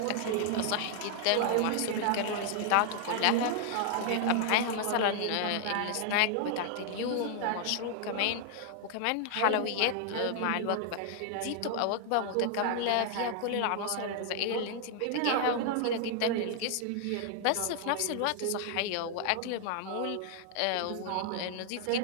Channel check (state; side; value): different; both; correlation 0.00